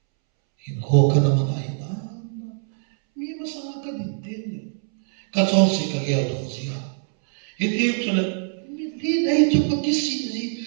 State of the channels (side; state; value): left; silent; 63 dB below the other